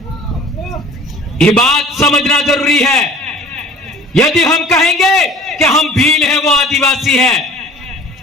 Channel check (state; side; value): normal; both; correlation 0.47